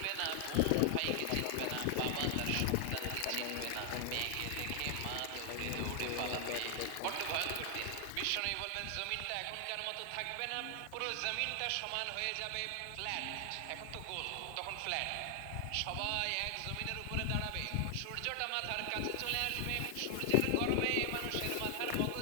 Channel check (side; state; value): both; different; correlation 0.00